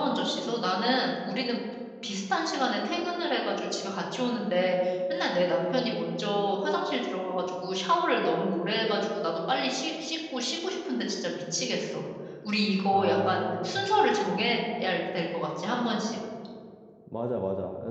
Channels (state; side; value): identical; both; correlation 1.00